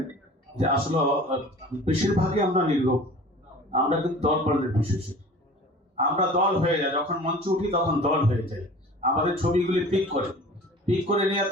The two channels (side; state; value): both; normal; correlation 0.43